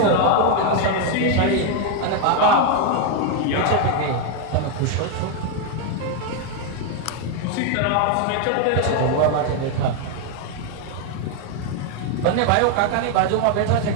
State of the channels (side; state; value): both; different; correlation 0.01